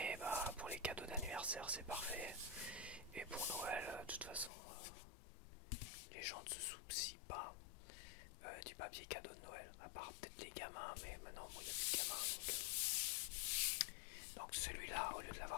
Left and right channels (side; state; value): right; drops out; at 4.5 s